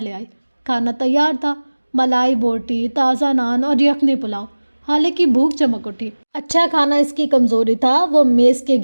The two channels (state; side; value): inverted; both; correlation -1.00